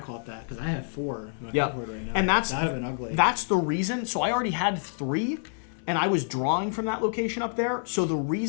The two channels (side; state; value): right; silent; 60 dB below the other